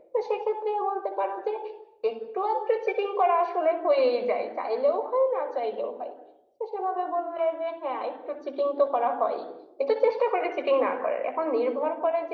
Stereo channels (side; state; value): both; identical; correlation 1.00